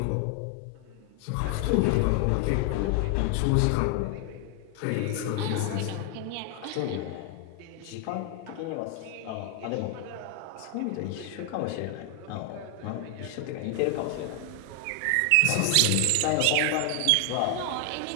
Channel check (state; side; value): different; both; correlation 0.00